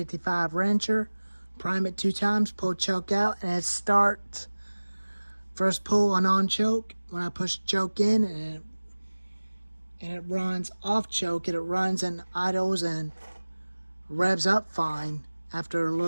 wrencher, prime it 2 times, pull choke out, and it starts. First pull on choke. When I push choke in, and it runs off choke, it runs and idles and revs up fine after a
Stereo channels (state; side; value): inverted; both; correlation -1.00